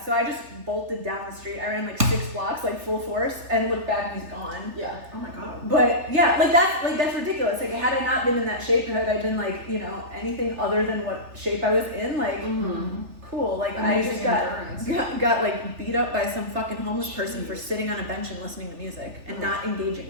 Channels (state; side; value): late; left; 3.4 ms